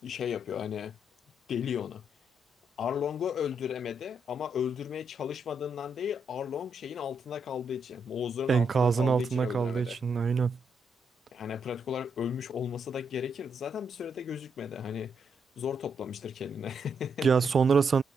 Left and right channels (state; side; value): normal; both; correlation 0.78